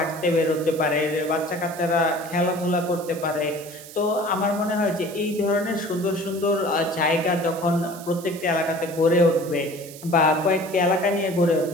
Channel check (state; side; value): noise; right; hiss, 16 dB below the sound